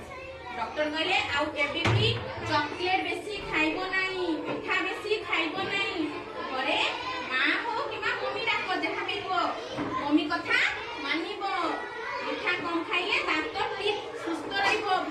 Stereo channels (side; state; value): both; identical; correlation 1.00